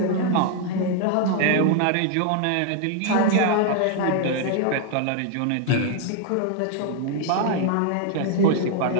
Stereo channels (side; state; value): both; different; correlation 0.00